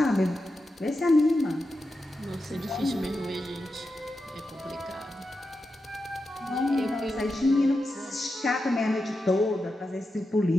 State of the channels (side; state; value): both; normal; correlation 0.89